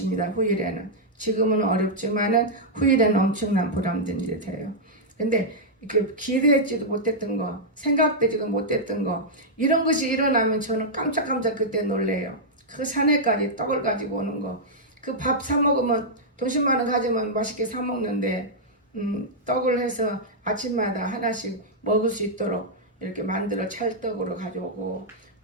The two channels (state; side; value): normal; both; correlation -0.07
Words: 후일에는. 지금은 어렵지만은 후일에는 엄청난 보람된 일이 돼요. 근데 이렇게 기대했지도 못했던 거, 생각되지도 못했던 거, 이런 것이 일어나면 저는 깜짝깜짝 그때 놀래요. 그 산에까지 떡을 가지고 오는 거. 그 밥 사 먹으면 돈 10만 원 가지면 맛있게 사 먹는데, 떡을 해서 아침마다 하나씩 먹을 수 있도록 이렇게 만들어 찰떡으로 가져오고,